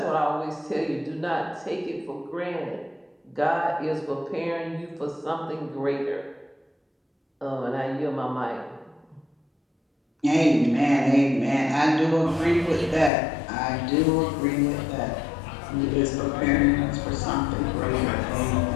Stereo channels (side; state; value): right; drops out; at 13.1 s